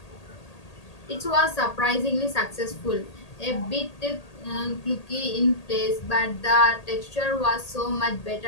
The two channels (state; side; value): late; right; 1.8 ms